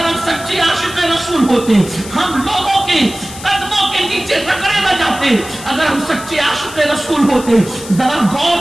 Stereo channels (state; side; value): noise; left; hiss, 14 dB below the sound